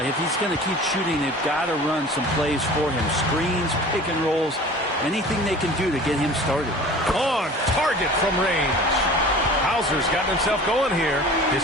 if he's going to keep shooting, they've got to run some plays for him. Screens, pick and rolls, anything they can do to get him started. On target from range. Hauser's gotten himself going here.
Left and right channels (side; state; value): both; normal; correlation 0.42